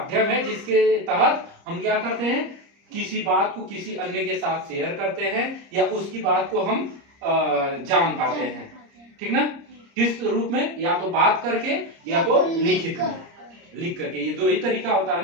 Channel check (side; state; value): left; late; 30 ms